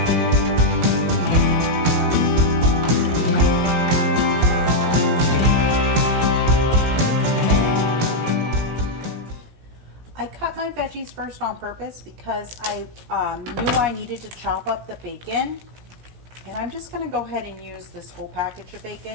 I cut my veggies first on purpose because I knew I needed to chop up the bacon. And I'm just gonna go ahead and use this whole package of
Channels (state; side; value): late; left; 17 ms